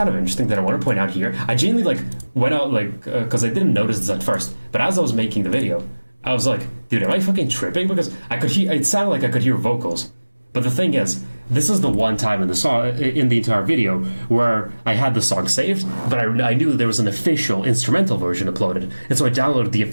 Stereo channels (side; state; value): both; inverted; correlation -1.00